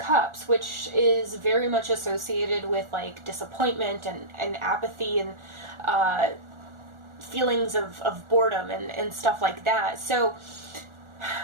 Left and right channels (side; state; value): left; late; 1.4 ms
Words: which is very much associated with like disappointment and apathy and feelings of boredom and stuff like that. So